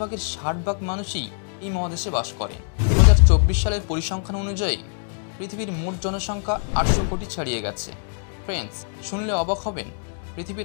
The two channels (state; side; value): silent; right; digital silence